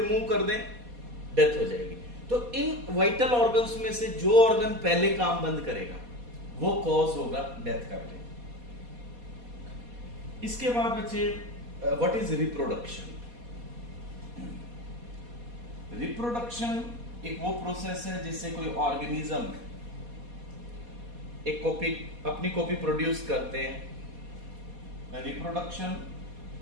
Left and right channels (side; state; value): left; late; 4.2 ms